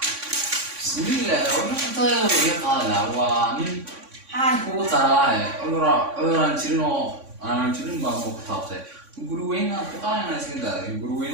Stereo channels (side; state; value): left; late; 3.5 ms